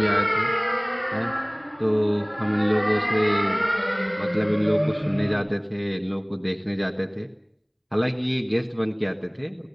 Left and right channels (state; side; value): identical; both; correlation 1.00